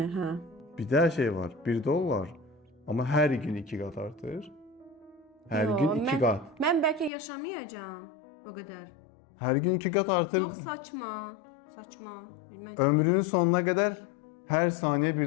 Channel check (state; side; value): drops out; right; at 7.1 s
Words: hə. Bir də şey var. 1 dollar amma hər gün 2 qat artır. Hər gün 2 qat. Mən bəlkə yaşamayacağam o qədər. Hər gün 2 qat artır. Çox saçma. Saçma. Ömrünün sonuna qədər hər saniyə